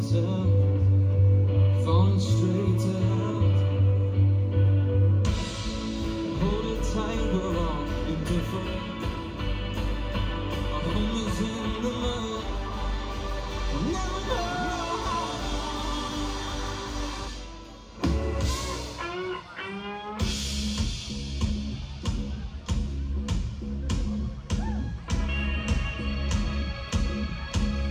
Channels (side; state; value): both; identical; correlation 1.00